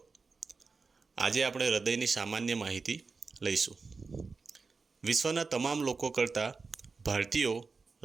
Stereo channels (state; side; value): quieter; left; 4.4 dB